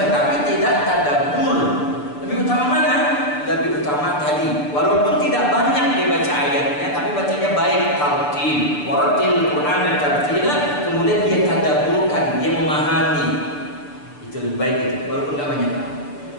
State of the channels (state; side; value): late; right; 6.8 ms